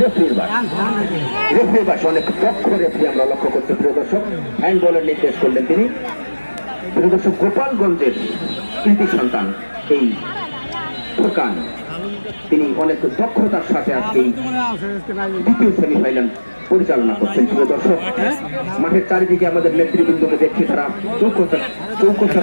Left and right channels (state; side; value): inverted; both; correlation -1.00